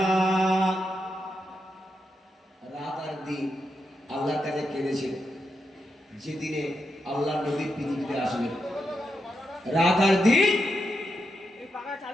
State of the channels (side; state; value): both; normal; correlation 0.85